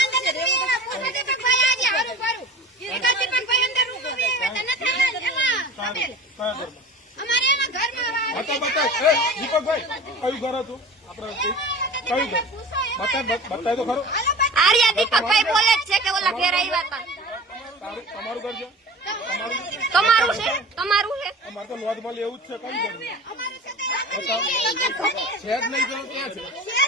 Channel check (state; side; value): normal; both; correlation 0.37